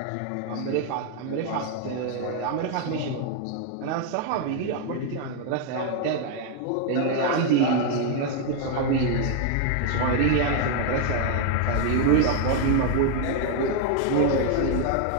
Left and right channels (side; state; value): both; different; correlation 0.00